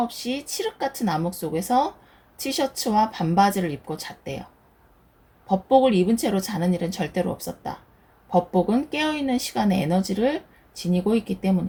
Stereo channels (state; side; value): identical; both; correlation 1.00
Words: 없이 칠흑 같은 암흑 속에서 티셔츠와 반바지를 입고 잤대요. 법복을 입은 채로 자는 일은 절대로 없었다. 법복은 깨어있는 시간의 에너지를 지니고 있기